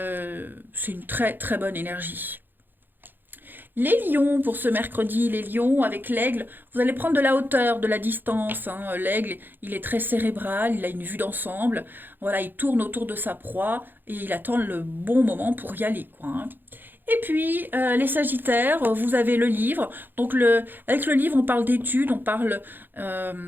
une très très bonne énergie. Les lions, pour ce mercredi, les lions avec l'aigle, vous allez prendre de la hauteur, de la distance, hein. L'aigle, il est très cérébral, il a une vue d'ensemble. Voilà, il tourne autour de sa proie et il attend le bon moment pour y aller, quoi, hein. Et puis, les Sagittaires, vous avez le livre. Donc, avec le livre, on parle d'études, on parle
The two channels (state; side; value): late; left; 0.093 ms